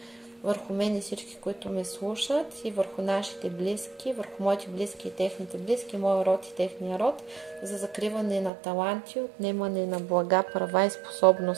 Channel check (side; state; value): left; drops out; at 8.5 s